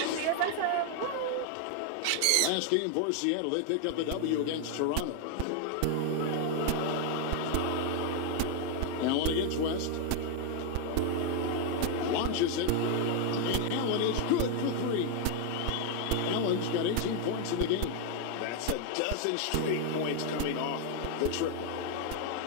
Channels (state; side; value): different; both; correlation 0.00